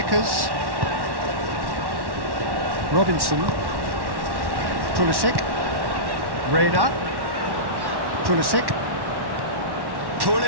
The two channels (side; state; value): left; late; 1.1 ms